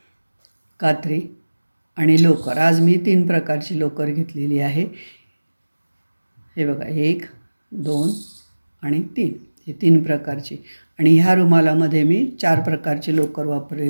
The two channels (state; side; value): inverted; both; correlation -1.00